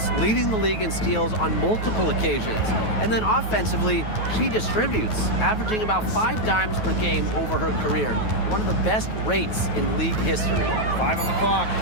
leading the league in steals on multiple occasions. And then offensively, she distributes, averaging about 5 dimes per game over her career. One of the best rates in league history. 5 on the clock.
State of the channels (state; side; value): late; right; 9.3 ms